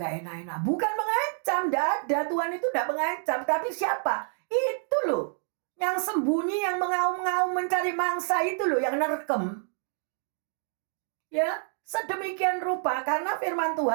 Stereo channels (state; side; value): silent; left; 57 dB below the other